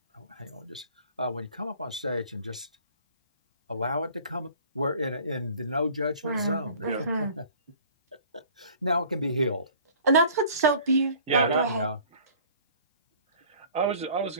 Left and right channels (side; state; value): both; inverted; correlation -0.50